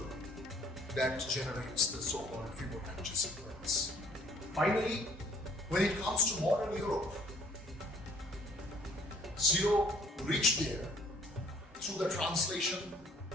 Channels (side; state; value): both; normal; correlation 0.59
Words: that generates the so-called Fibonacci sequence. Finally, when it comes to modern Europe, 0 reached there through the translation